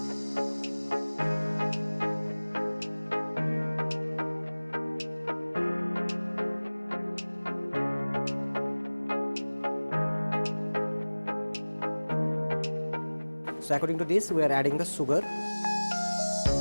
So according to this we are adding the sugar.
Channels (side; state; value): both; inverted; correlation -1.00